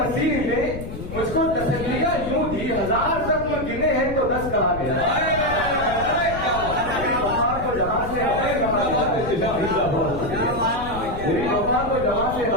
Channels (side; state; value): left; noise; rumble, 9 dB below the sound